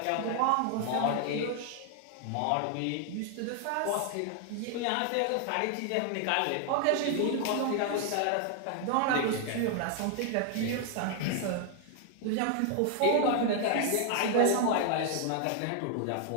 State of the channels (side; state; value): both; different; correlation 0.00